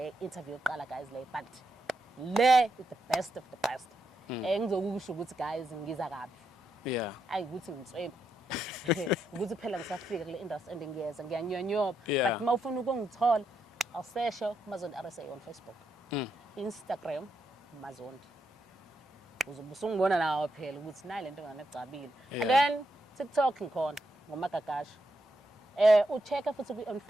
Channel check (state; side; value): normal; both; correlation 0.82